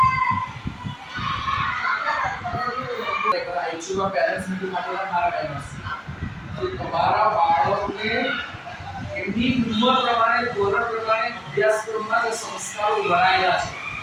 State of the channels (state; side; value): identical; both; correlation 1.00